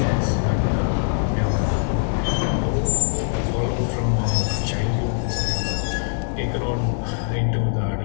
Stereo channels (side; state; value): right; silent; 64 dB below the other